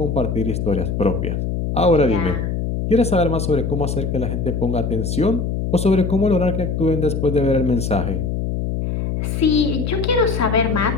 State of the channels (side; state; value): left; noise; hum, 2 dB below the sound